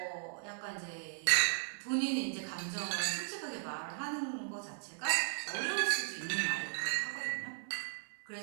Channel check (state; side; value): silent; left; digital silence